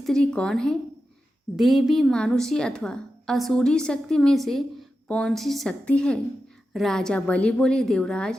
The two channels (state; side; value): normal; both; correlation 0.91